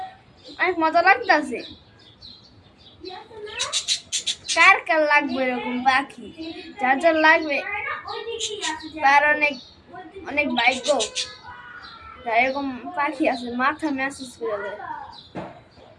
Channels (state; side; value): identical; both; correlation 1.00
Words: অনেক মজা লাগতেছে। কার কার লাগবে এরকম পাখি? যার যার লাগবে তার অনেক অনেক ভাগ্য, যার এরকম পাখি আছে মাথা ম্যাসেজ করে দেয়।